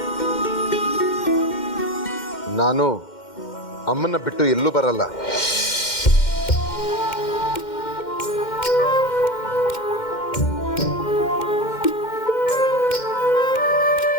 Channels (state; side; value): late; right; 2.1 ms